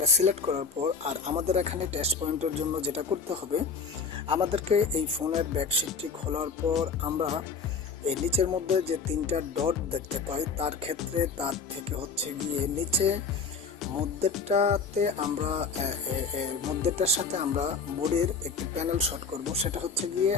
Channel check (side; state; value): right; quieter; 4.9 dB